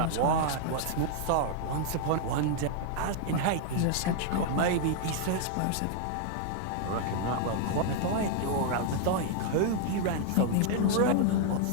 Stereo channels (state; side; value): different; both; correlation 0.00